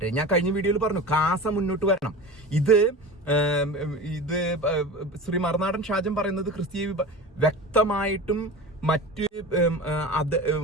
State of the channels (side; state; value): both; normal; correlation 0.32